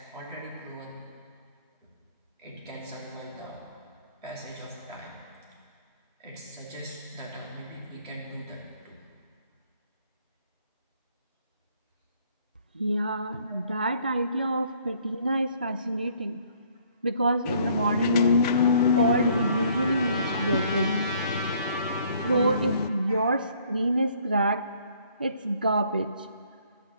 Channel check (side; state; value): both; inverted; correlation -0.61